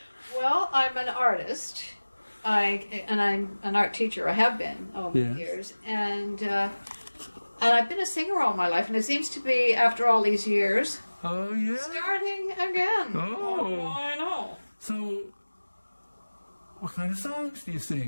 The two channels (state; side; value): inverted; both; correlation -1.00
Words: Well, I'm an artist. I'm an art teacher. I have been over the years, and I've been a singer all my life. And it seems to be, after all these years, starting again. Oh, I know. So, what kind of songs do you